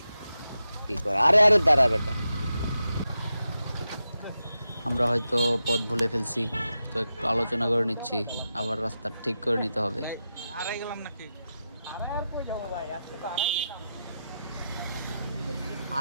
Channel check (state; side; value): inverted; both; correlation -0.89